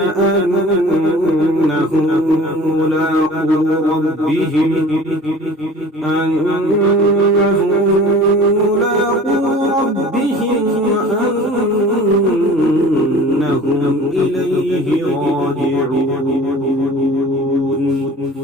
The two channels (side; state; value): both; normal; correlation 0.44